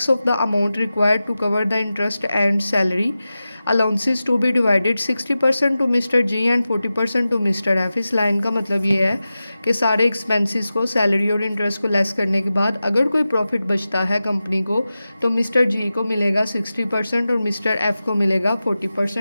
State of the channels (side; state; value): both; inverted; correlation -0.94